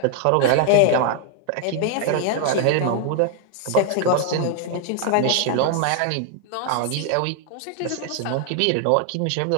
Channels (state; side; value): different; both; correlation 0.00